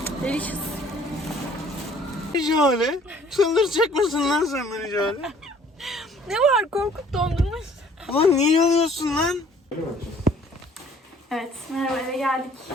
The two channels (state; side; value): normal; both; correlation 0.56